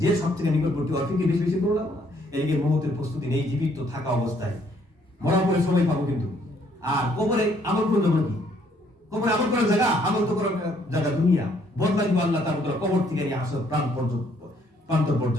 যে সব থেকে নিকটবর্তী অর্থ কি বেশি বেশি করে লাগবে না? এদিকে মৌতের প্রস্তুতি নেই, জীবিত থাকা অবস্থায় মরার পরে সময় পাবো কিন্তু। আর কবরে আমল করে দেবো কি? কবরে আমল করার জায়গা, আমল তো করার জায়গা দুনিয়া। বদলা দিব আল্লাহ তাআলা কবর থেকে নিয়ে আসো প্রান্ত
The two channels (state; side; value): normal; both; correlation 0.66